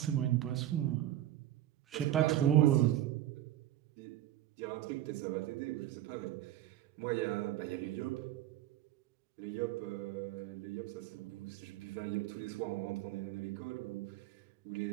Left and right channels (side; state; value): left; quieter; 13.1 dB